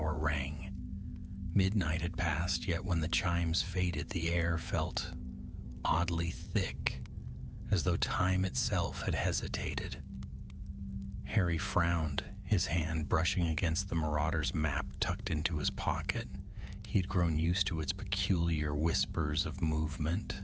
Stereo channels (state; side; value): identical; both; correlation 1.00